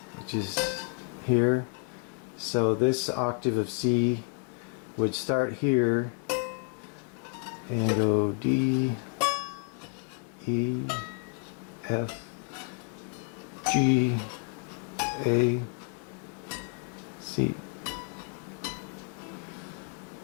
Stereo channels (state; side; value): quieter; right; 37.2 dB